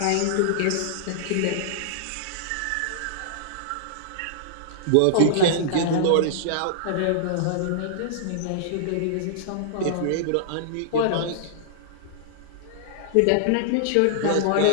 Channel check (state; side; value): different; both; correlation -0.01